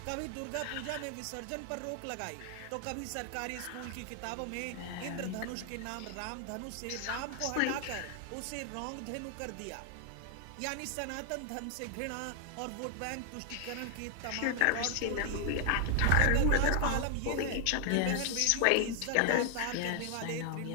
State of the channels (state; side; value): different; both; correlation 0.00